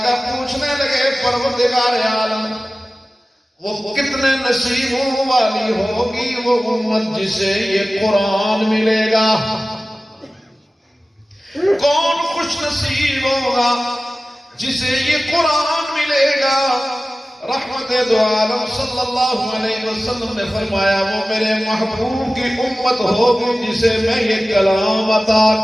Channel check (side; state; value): both; normal; correlation 0.96